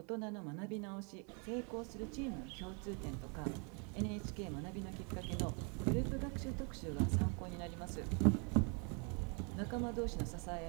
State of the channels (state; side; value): quieter; left; 35.4 dB